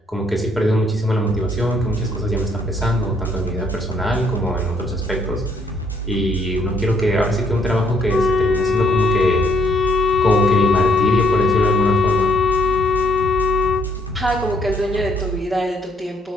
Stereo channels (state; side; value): normal; both; correlation 0.68